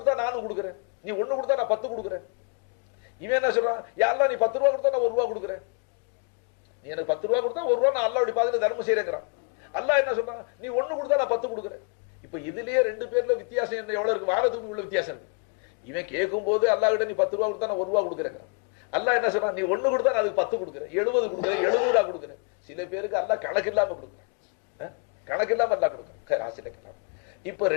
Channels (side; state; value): right; quieter; 36.6 dB